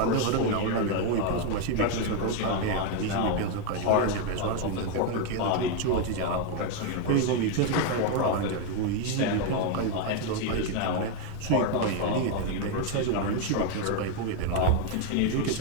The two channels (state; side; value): different; both; correlation 0.01